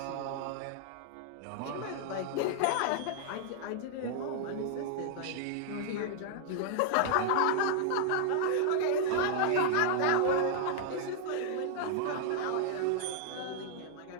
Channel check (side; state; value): both; different; correlation -0.01